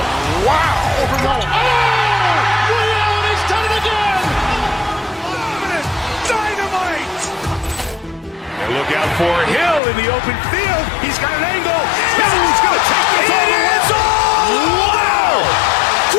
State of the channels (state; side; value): drops out; right; at 9.8 s